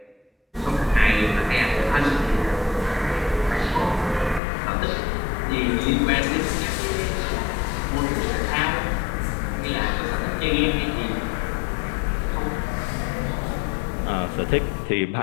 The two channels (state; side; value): drops out; right; at 4.4 s